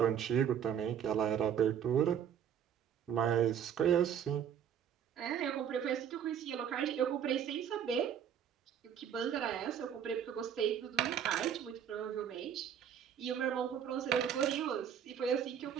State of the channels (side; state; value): left; quieter; 8.8 dB